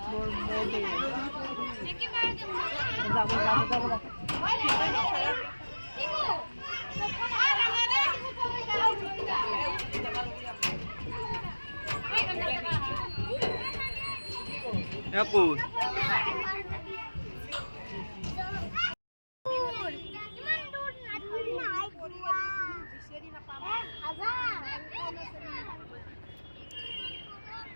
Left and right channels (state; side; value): inverted; both; correlation -1.00